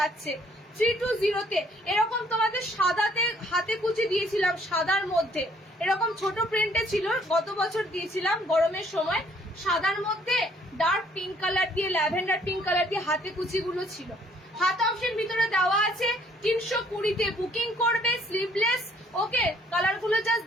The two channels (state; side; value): normal; both; correlation 0.63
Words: 320-তে এরকম তোমাদের সাদাতে হাতে কুচি দিয়েছিলাম, সাদার মধ্যে এরকম ছোট প্রিন্টে ছিল, গত বছর দিয়েছিলাম গরমের সময়। সাদার মধ্যে ডার্ক পিঙ্ক কালার দিয়ে, ল্যাভেন্ডার পিঙ্ক কালার দিয়ে হাতে কুচি গুলো ছিল। হাত অপশন ভিতরে দেওয়া আছে। 320-তে বুকিং করবে, স্লিভলেস। ওকে, কালার গুলো জাস্ট